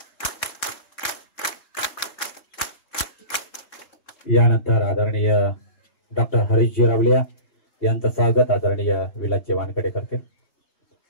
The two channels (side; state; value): right; late; 3.9 ms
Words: यानंतर आदरणीय डॉक्टर हरीशजी रावलिया यांचं स्वागत आदरणीय विलासजी वानखडे करतील.